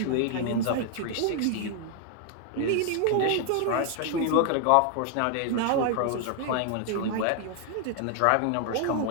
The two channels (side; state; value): both; different; correlation 0.00